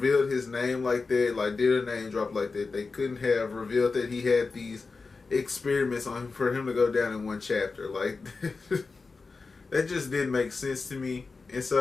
his name like that, like did a name drop like that. They couldn't have revealed that he had these experiments on him for him to go down in one chapter. Like that just didn't make sense to me. And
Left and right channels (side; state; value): right; quieter; 4.2 dB